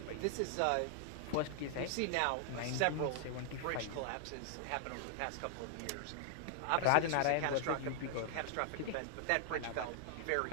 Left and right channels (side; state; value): both; different; correlation -0.01